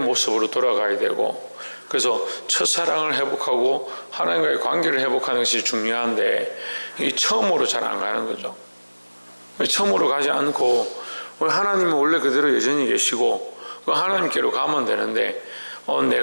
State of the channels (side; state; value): both; inverted; correlation -1.00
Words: 돌아가야 되고, 그래서 첫사랑을 회복하고 하나님과의 관계를 회복하는 것이 중요한데 이 처음으로 잘 안 가는 거죠. 처음으로 가지 않고 하나님은 원래 그대로 여전히 계시고 하나님께로 가면 되는데